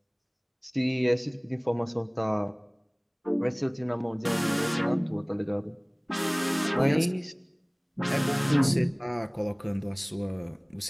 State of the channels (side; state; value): both; identical; correlation 1.00